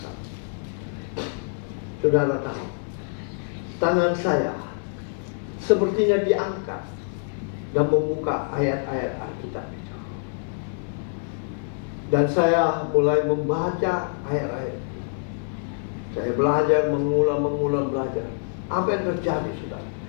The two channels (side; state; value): right; silent; 61 dB below the other